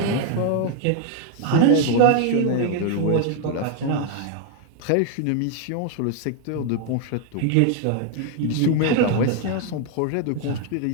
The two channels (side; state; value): both; different; correlation 0.00